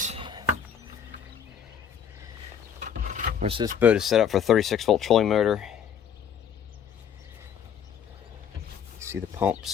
Of course, this boat is set up for a 36-volt trolling motor. See the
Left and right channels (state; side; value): quieter; right; 8.1 dB